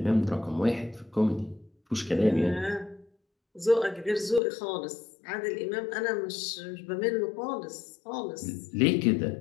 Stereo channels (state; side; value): drops out; right; at 4.4 s